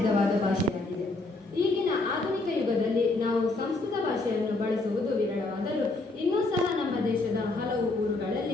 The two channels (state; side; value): quieter; right; 3.1 dB